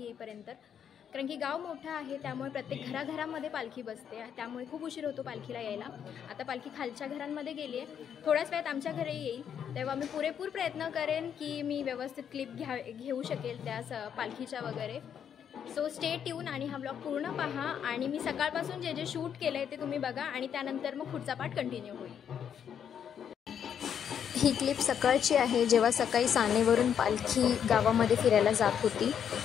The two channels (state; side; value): quieter; right; 8.4 dB